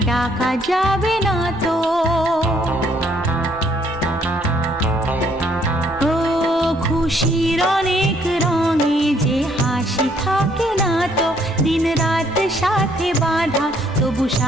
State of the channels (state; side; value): normal; both; correlation 0.66